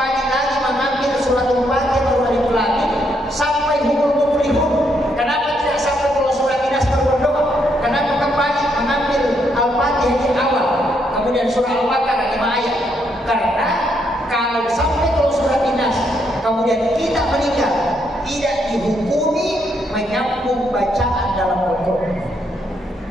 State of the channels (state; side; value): normal; both; correlation 0.75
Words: lagi mengambil surat Al-Fatihah baru Alif Lam Mim sampai humul muflihun? Kenapa tidak sampai pulau surat Nas baru berdoa? Kenapa kembali mengambil Al-Fatihah di awal, kemudian surah Al-Baqarah 5 ayat? Karena kalau sampai pulau surat Nas kemudian kita meninggal, tidak dihukumi menyambung bacaan dalam Al-Quran.